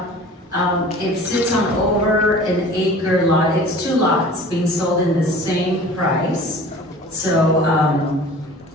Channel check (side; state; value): both; normal; correlation 0.44